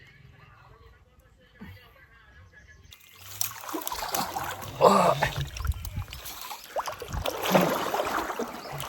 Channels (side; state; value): both; identical; correlation 1.00